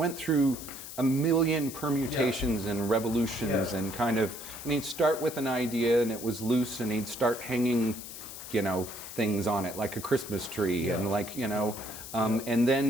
through a million permutations and revolutions and kind of, and he'd start with an idea and it was loose and he'd start hanging, you know, things on it like a Christmas tree and like, you know, and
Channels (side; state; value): left; noise; hiss, 11 dB below the sound